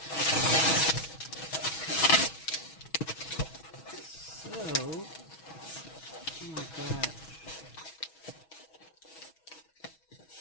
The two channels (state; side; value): late; right; 6.2 ms